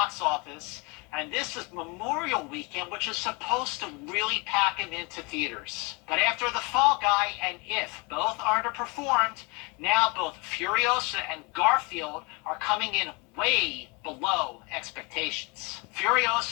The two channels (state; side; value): quieter; right; 29.2 dB